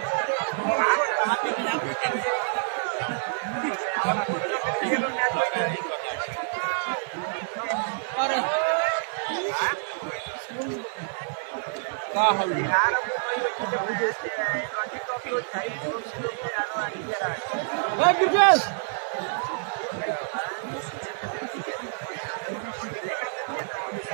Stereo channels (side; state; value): left; silent; digital silence